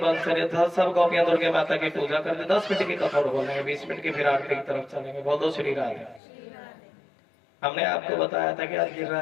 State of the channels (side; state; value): right; drops out; at 6.2 s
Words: अंशरित सब गोपियां दुर्गे माता की पूजा करते 10 मिनट की कथा बोलेंगे 20 मिनट की फिर आरती की तरफ चलेंगे बोल दो श्री राधे हमने आपको बताया था कि आज